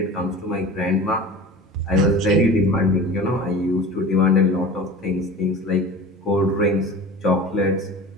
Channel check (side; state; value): both; normal; correlation 0.36